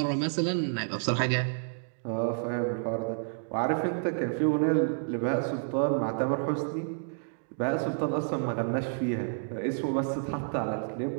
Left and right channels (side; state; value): left; silent; digital silence